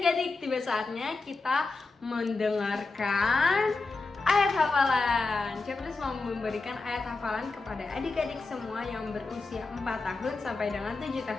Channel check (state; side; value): quieter; right; 3.8 dB